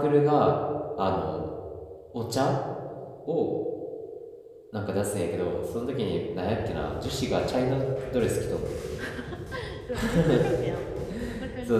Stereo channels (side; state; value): both; identical; correlation 1.00